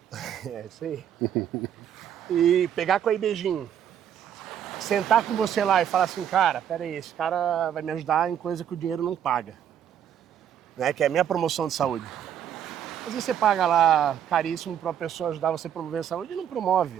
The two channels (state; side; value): quieter; left; 9.5 dB